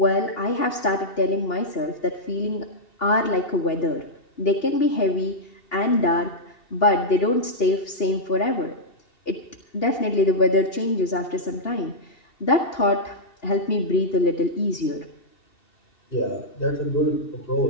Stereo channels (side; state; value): right; late; 2.8 ms